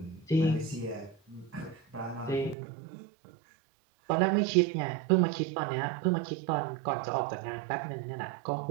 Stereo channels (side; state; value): left; drops out; at 2.6 s